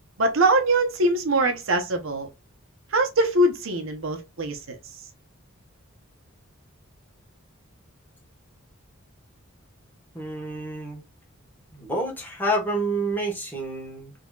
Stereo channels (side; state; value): both; normal; correlation 0.02